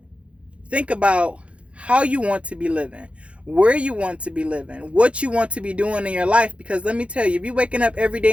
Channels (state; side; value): late; left; 0.061 ms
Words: Think about how you want to be living, where you want to be living, what you want to be doing in your life. Because let me tell you, if you're waking up every